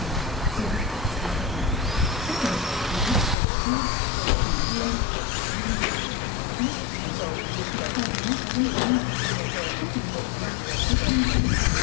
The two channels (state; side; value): drops out; right; at 3.4 s